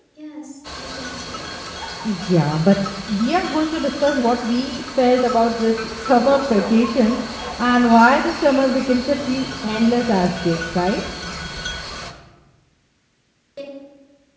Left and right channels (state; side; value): identical; both; correlation 1.00